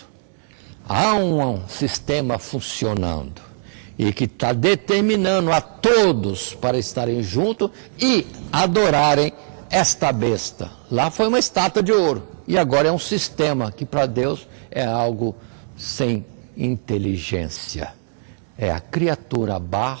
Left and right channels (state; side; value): silent; left; digital silence